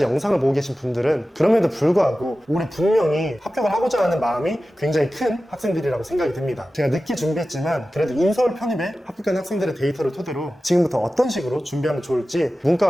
영상을 보고 계신 분들은 그럼에도 불구하고 올해 분명히 합격을 하고자 하는 마음이 굉장히 큰 학생들이라고 생각이 듭니다. 제가 늦게 준비했지만 그래도 인서울 편입에 합격한 학생들의 데이터를 토대로 지금부터 어떤 식으로 준비하면 좋을지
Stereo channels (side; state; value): both; normal; correlation 0.95